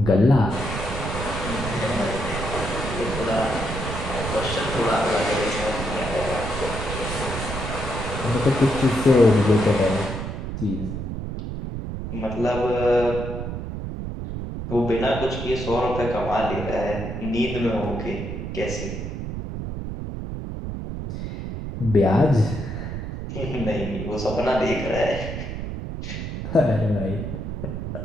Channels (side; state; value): right; noise; rumble, 6 dB below the sound